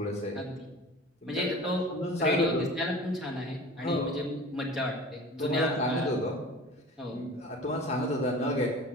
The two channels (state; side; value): normal; both; correlation 0.39